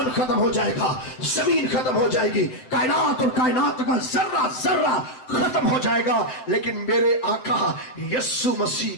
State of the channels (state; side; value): late; right; 7.7 ms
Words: ختم ہو جائے گا، زمین ختم ہو جائے گی، کائنات اور کائنات کا ذرہ ذرہ ختم ہو جائے گا، لیکن میرے آقا یسوع مسیح